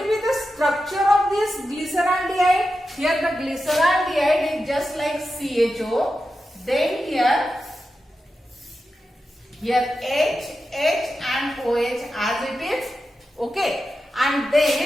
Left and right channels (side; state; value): both; normal; correlation 0.90